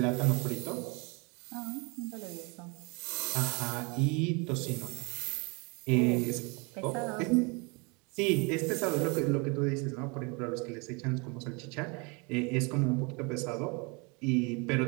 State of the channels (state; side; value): quieter; left; 30.2 dB